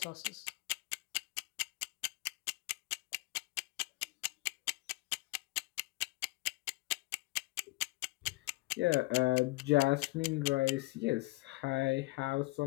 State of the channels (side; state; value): right; quieter; 22.5 dB